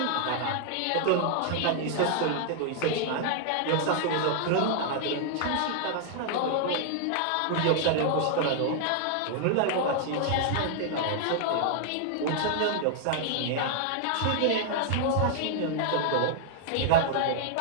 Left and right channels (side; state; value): both; different; correlation -0.01